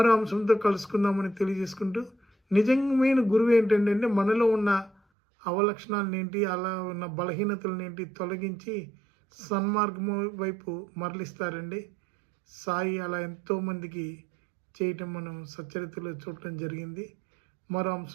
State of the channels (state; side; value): drops out; left; at 5.0 s